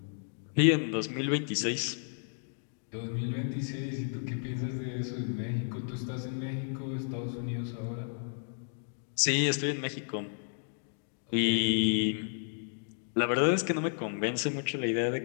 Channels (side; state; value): right; silent; digital silence